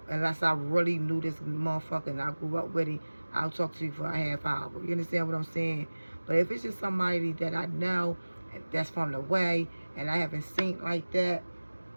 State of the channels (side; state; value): both; inverted; correlation -1.00